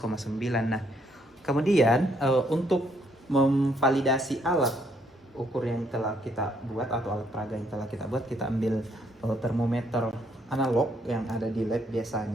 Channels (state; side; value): normal; both; correlation 0.71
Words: Nah, kemudian untuk memvalidasi alat ukur yang telah kita buat atau alat peraga yang telah kita buat, kita ambil termometer analog yang ada di lab